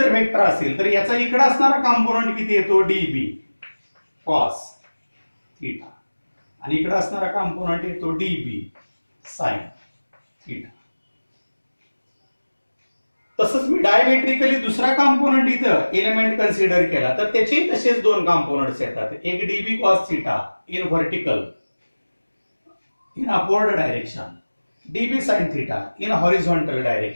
वेक्टर असेल तर याचा इकडे असणारा कंपोनेंट किती येतो dB cos थीटा आणि इकडे असणारा कंपोनेंट येतो dB sin थीटा. तसंच मी डायमेट्रिकली दुसरा कंपोनेंट इथं एलिमेंट कन्सिडर केला तर त्याचे तसेच दोन कंपोनेंट्स येतात. एक dB cos theta in vertical in upward direction, dB sin theta in horizontal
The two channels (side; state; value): both; inverted; correlation -1.00